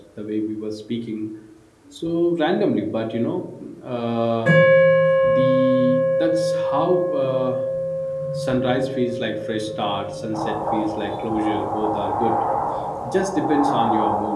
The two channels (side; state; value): both; identical; correlation 1.00